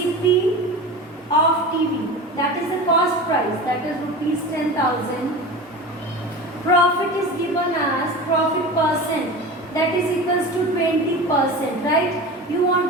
of TV, that is the cost price, that is rupees 10,000. Profit is given as profit percent, that is equals to 20%, right? You want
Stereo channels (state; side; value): normal; both; correlation 0.31